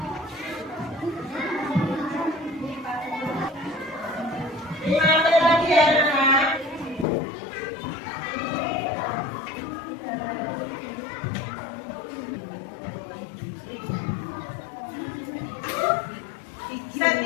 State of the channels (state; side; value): drops out; right; at 7.1 s